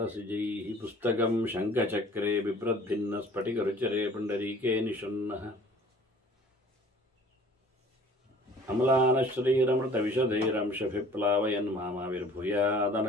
पुस्तकं शङ्खचक्रे बिभ्रद्भिन्नस्फटिकरुचिरे पुण्डरीके निषण्णः अम्लानश्रीरमृतविशदैरंशभिप्लावयन्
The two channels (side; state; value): both; normal; correlation 0.51